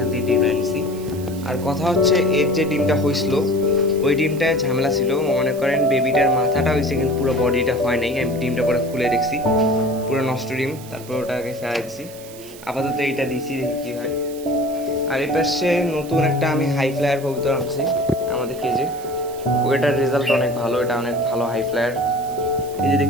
থেকে ডিমটা নিয়েছি। আর কথা হচ্ছে এর যে ডিমটা হয়েছিল ওই ডিমটায় ঝামেলা ছিল। মনে করেন বেবিটার মাথাটা হয়েছে কিন্তু পুরো বডিটা হয় নাই। আমি ডিমটা পরে খুলে দেখছি, পুরো নষ্ট ডিম। তারপর ওটাকে ফেলাই দিচ্ছি, আপাতত এইটা দিচ্ছি, দেখি কী হয়। আর এই পাশে নতুন একটা আমি হাই ফ্লায়ার কবুতর আনছি আমাদের কেজে, ওইটার রেজাল্ট অনেক ভালো, এটা অনেক ভালো হাই ফ্লায়ার। এই যে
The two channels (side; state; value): right; noise; hiss, 18 dB below the sound